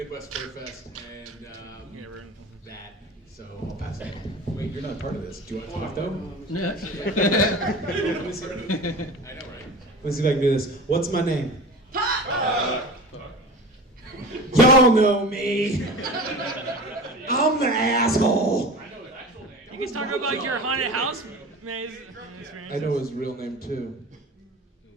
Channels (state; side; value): normal; both; correlation 0.34